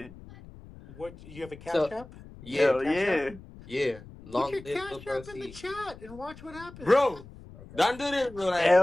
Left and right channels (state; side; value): noise; left; rumble, 18 dB below the sound